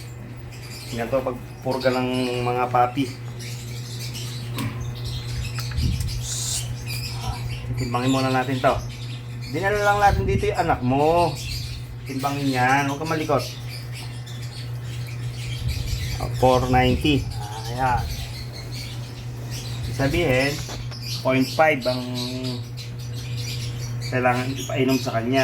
Yan to pagpurga ng mga papi. Timbangin muna natin to. Dinala lang natin dito yung anak mo. Timbangin yan. Huwag ka malikot. 490. Ayan. Sabihin, 0.5 ang kailangan ipainom sa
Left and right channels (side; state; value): both; identical; correlation 1.00